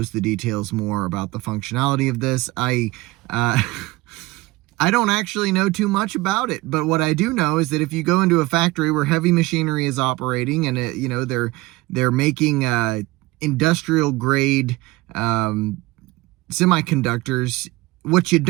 that details more about the functionality of this. I don't actually know too much about it, but what I do know is that if you go into a factory where heavy machinery is operating and they're making industrial grade semiconductors, what you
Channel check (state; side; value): quieter; left; 20.7 dB